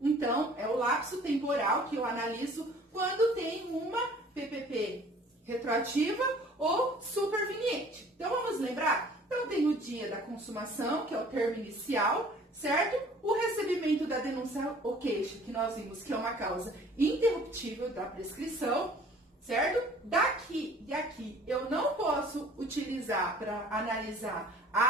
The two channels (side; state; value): both; normal; correlation 0.52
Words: Então, é o lapso temporal que eu analiso quando tem uma PPP retroativa ou superveniente. Então, vamos lembrar? Então, tem o dia da consumação, que é o termo inicial, certo? O recebimento da denúncia ou queixa, que nós vimos que é uma causa interruptível da prescrição, certo? Daqui e aqui, eu não posso utilizar para analisar